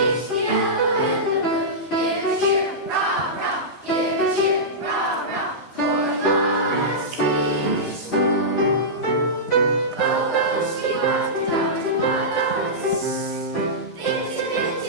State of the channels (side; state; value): both; normal; correlation -0.14